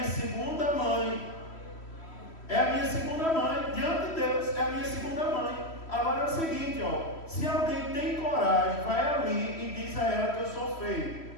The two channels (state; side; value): late; right; 3.1 ms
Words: segunda mãe. É a minha segunda mãe, diante de Deus, é a minha segunda mãe. Agora é o seguinte, ó, se alguém tem coragem, vai ali e diz a ela que eu sou feio.